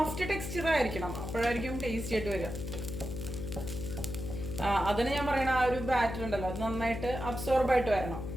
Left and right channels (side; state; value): left; noise; hum, 6 dB below the sound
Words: ടെക്സ്ചർ ആയിരിക്കണം, അപ്പോഴായിരിക്കും ടേസ്റ്റി ആയിട്ട് വരിക. അതിന് ഞാൻ പറയണ ആ ഒരു ബാറ്റർ ഉണ്ടല്ലോ അത് നന്നായിട്ട് അബ്സോർബ് ആയിട്ട് വരണം.